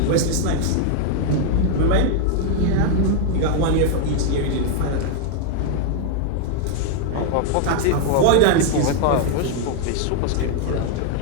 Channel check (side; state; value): both; different; correlation 0.00